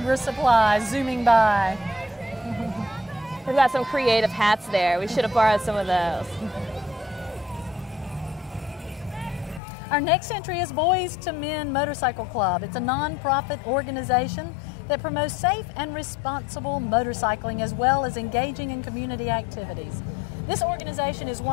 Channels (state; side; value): drops out; right; at 9.6 s